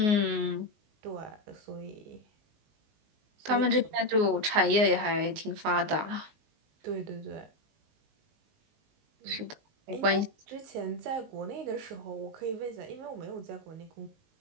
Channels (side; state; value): left; late; 19 ms